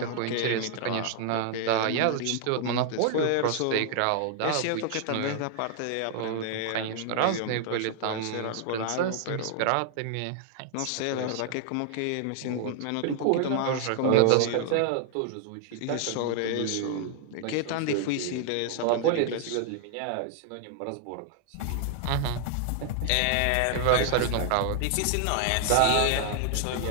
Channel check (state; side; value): different; both; correlation 0.00